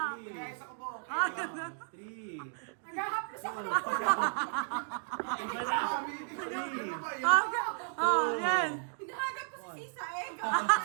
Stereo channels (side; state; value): left; silent; digital silence